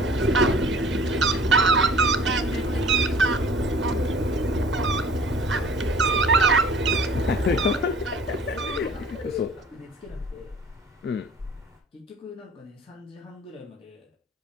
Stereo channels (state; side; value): normal; both; correlation 0.49